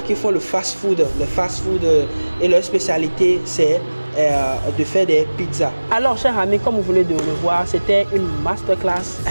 qui font le fast-food. Le fast-food et leur spécialité, c'est de faire des pizzas. Alors, chers amis, comme vous venez de le voir, c'était une masterclass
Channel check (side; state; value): both; inverted; correlation -1.00